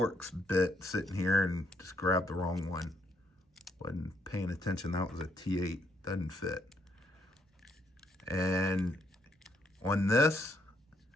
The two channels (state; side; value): normal; both; correlation 0.73